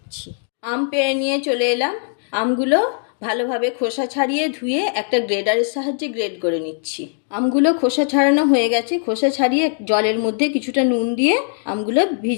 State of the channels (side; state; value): right; silent; 58 dB below the other